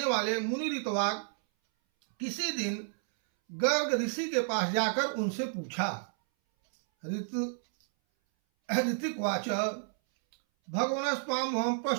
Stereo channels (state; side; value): silent; left; 57 dB below the other